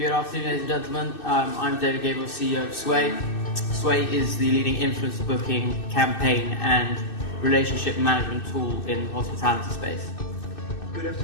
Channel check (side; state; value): right; late; 2.6 ms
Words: afternoon, ladies and gentlemen. I'm Gabriele, CEO of Swayy. Swayy is the leading influencer booking, campaign and relationship management tool in the hospitality space. Good